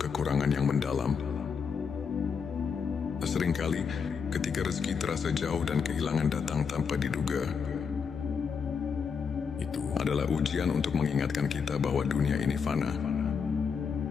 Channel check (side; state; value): right; quieter; 6.1 dB